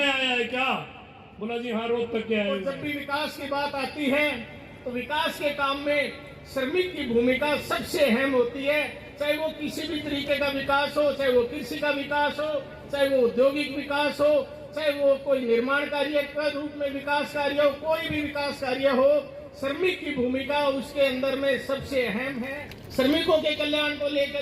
आया है क्या? बोला जी हाँ, रोज तक के आए। और जब भी विकास की बात आती है तो विकास के काम में श्रमिक की भूमिका सबसे अहम होती है। चाहे वो किसी भी तरीके का विकास हो, चाहे वो कृषि का विकास हो, चाहे वो औद्योगिक विकास हो, चाहे वो कोई निर्माण कार्य के रूप में विकास कार्य हो, कोई भी विकास कार्य हो, श्रमिक की भूमिका उसके अंदर में सबसे अहम है। श्रमिकों के कल्याण को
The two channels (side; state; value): both; identical; correlation 1.00